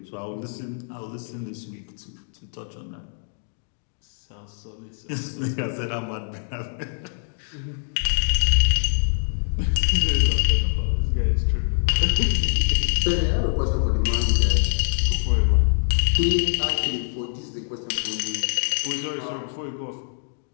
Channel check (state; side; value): silent; right; digital silence